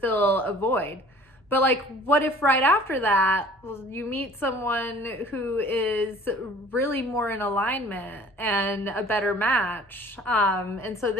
a void. But like, what if right after that you meet someone who is really more in alignment and a better match? And so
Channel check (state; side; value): normal; both; correlation 0.50